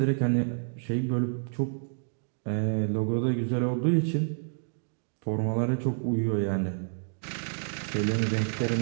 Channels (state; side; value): silent; left; digital silence